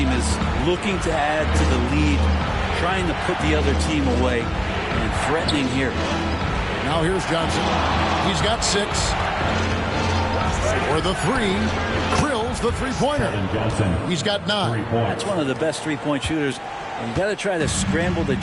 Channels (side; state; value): both; identical; correlation 1.00